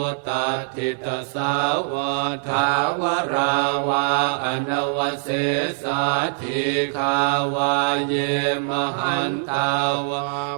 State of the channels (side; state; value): left; silent; 64 dB below the other